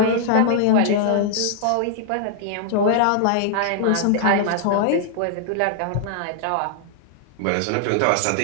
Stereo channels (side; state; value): both; different; correlation 0.00